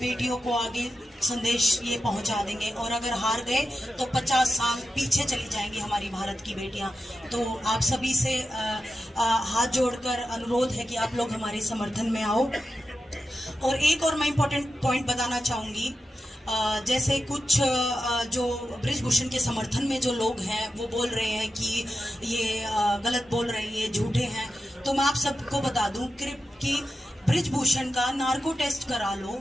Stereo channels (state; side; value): normal; both; correlation 0.90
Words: को आगे संदेश ये पहुंचा देंगे, और अगर हार गए तो 50 साल पीछे चली जाएंगी हमारी भारत की बेटियां। तो आप सभी से हाथ जोड़कर अनुरोध है कि आप लोग हमारे समर्थन में आओ। और एक और मैं इम्पोर्टेंट पॉइंट बताना चाहूँगी, जैसे कुछ जो बृजभूषण के समर्थन में जो लोग हैं वो बोल रहे हैं कि ये गलत बोल रहे हैं, ये झूठे हैं। तो मैं आप सबको बता दूं कि बृजभूषण का नार्को टेस्ट करा लो